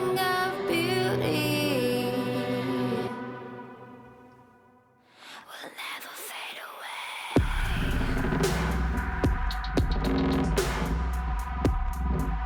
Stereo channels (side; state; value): both; identical; correlation 1.00